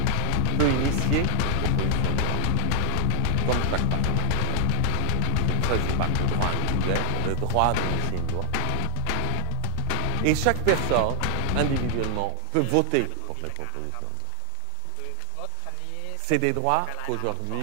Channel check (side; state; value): both; different; correlation 0.00